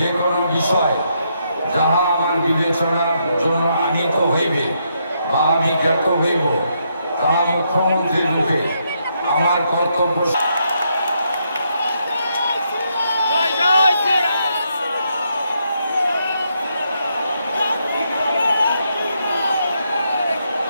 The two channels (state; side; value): inverted; both; correlation -0.78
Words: কোনো বিষয় যাহা আমার বিবেচনার জন্য আনিত হইবে বা আমি জ্ঞাত হইব, তাহা মুখ্যমন্ত্রী রূপে আমার কর্তব্য